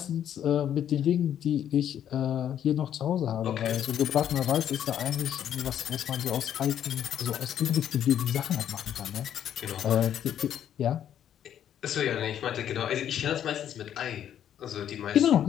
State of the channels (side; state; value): right; quieter; 10.1 dB